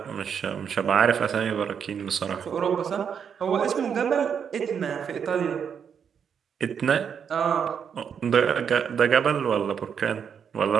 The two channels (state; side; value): quieter; left; 7.4 dB